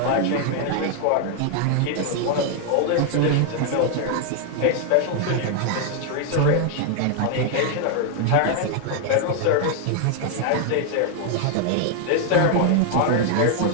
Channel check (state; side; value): different; both; correlation 0.00